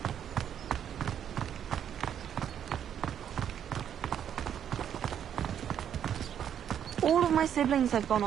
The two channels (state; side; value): quieter; left; 9.2 dB